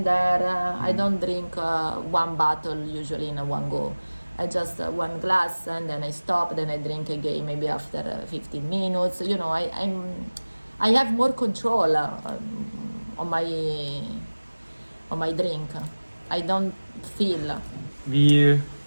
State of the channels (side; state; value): both; inverted; correlation -1.00